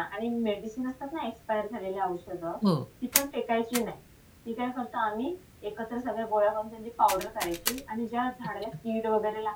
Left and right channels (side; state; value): both; identical; correlation 1.00